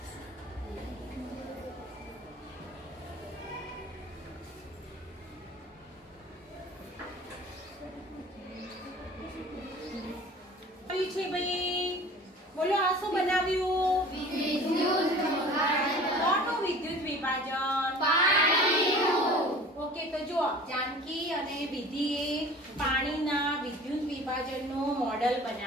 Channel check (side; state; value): both; normal; correlation 0.43